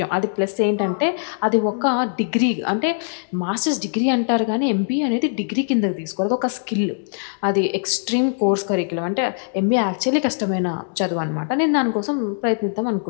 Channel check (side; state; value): right; silent; digital silence